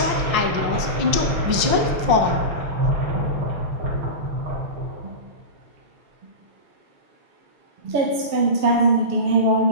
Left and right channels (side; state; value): left; late; 5.7 ms